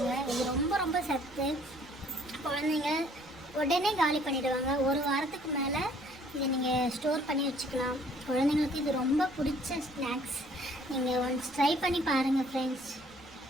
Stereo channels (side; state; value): right; noise; rumble, 28 dB below the sound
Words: இது ரொம்ப ரொம்ப சத்து. குழந்தைங்க உடனே காலி பண்ணிவிடுவாங்க. 1 வாரத்துக்கு மேலே இதை நீங்கள் ஸ்டோர் பண்ணி வச்சுக்கலாம். குழந்தைங்களுக்கு இது ரொம்ப பிடிச்ச ஸ்நாக்ஸ். நீங்கள் ஒன்ஸ் ட்ரை பண்ணி பாருங்கள் ஃப்ரெண்ட்ஸ்.